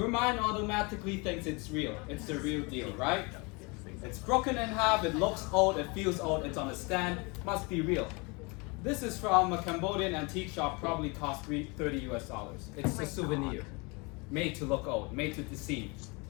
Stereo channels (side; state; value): right; quieter; 29.1 dB